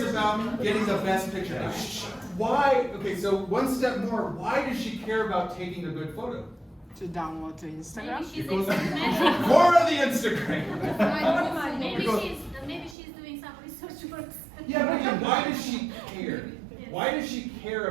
about getting the best picture. Now, why? Okay, so one step more. Why does she care about taking a good photo? To download to Instagram. For the Instagram. Maybe she's doing some research work. Yeah, but again, why does she care? Why does she care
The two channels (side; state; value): left; drops out; at 13.0 s